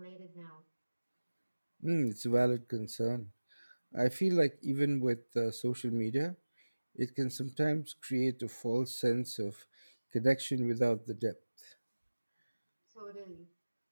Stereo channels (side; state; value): both; inverted; correlation -1.00